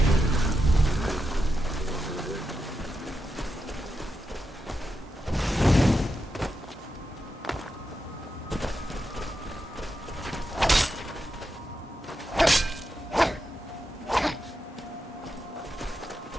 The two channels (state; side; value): normal; both; correlation 0.87